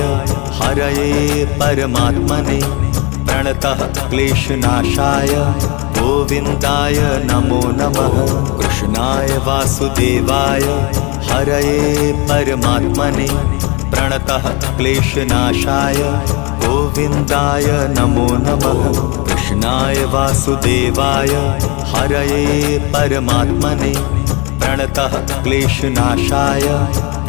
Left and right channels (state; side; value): quieter; right; 28.4 dB